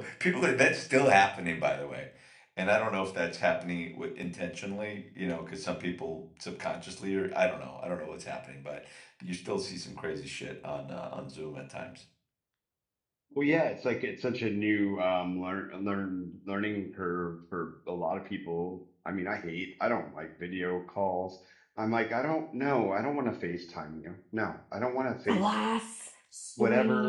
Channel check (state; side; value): identical; both; correlation 1.00